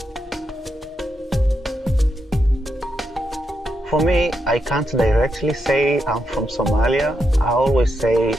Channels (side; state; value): both; normal; correlation 0.83